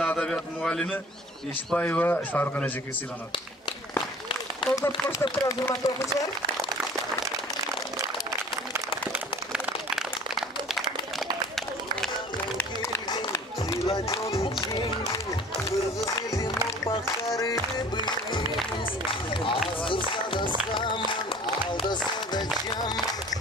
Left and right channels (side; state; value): both; normal; correlation 0.48